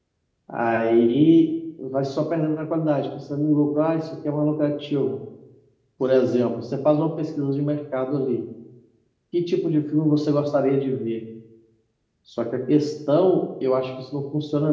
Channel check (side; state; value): both; identical; correlation 1.00